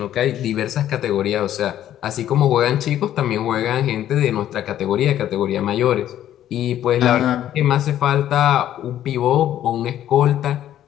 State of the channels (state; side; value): quieter; right; 11.7 dB